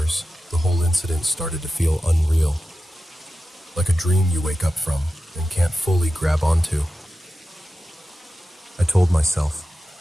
the whole incident started to feel unreal. Like a dream you wake up from and can't fully grab onto. I told myself,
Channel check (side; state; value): both; normal; correlation 0.92